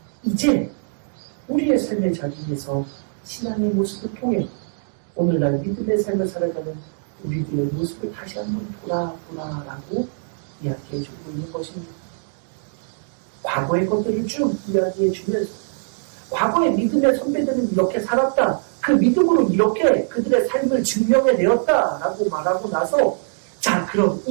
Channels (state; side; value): silent; left; digital silence